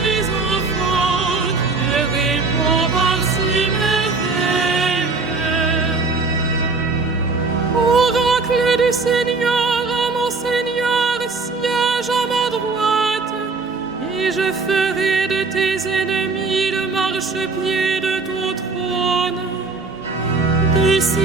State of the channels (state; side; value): quieter; left; 4.0 dB